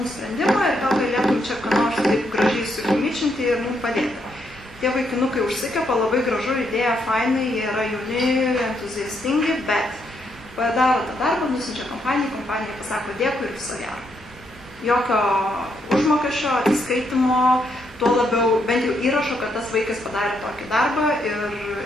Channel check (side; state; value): both; normal; correlation 0.76